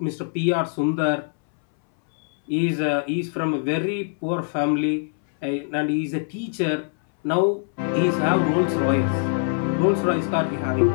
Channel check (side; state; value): right; silent; 63 dB below the other